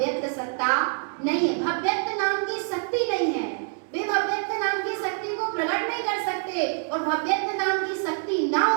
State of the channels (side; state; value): left; silent; 57 dB below the other